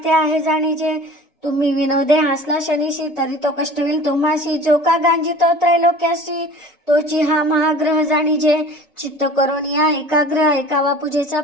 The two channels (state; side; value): normal; both; correlation 0.42